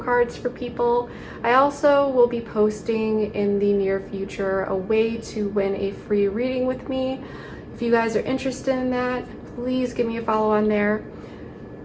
for people. I also will be posting in the near future a way to win a free reading with me. If you guys are interested in that, please give me a follow on there.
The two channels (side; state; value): both; identical; correlation 1.00